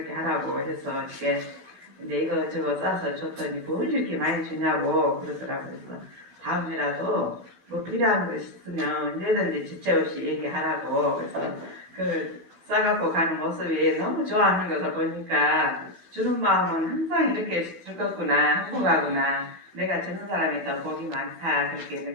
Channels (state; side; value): late; left; 12 ms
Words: 하라고 해서 이렇게 근데 이거 싸서 줬더니 뭘 이렇게 많이 주냐고 그러더라고요. 그래서 다음이라도 뭐 필요한 거 있으면 언제든지 지체 없이 얘기하라고 그래서 그 싸갖고 가는 모습이 너무 좋아하는 것을 보니까 주는 마음은 항상 이렇게 즐겁구나 행복하구나 내가 주는 사람이 더 복이 많다 그렇게